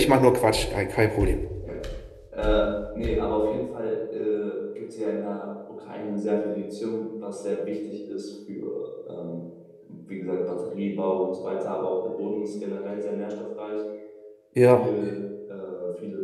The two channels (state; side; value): identical; both; correlation 1.00